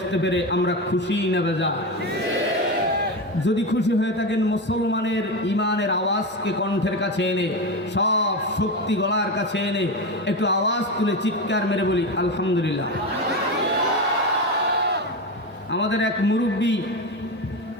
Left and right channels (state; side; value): normal; both; correlation 0.18